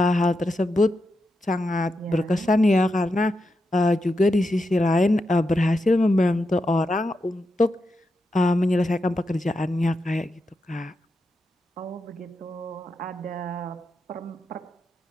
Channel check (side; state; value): both; normal; correlation 0.86